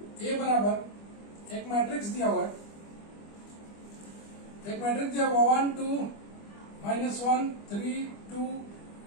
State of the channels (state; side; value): late; right; 25 ms